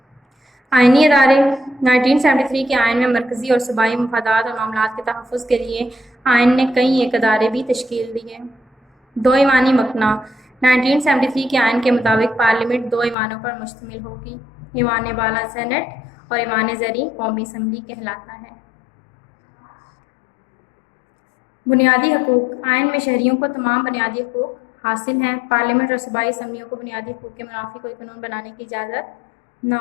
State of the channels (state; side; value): drops out; right; at 13.2 s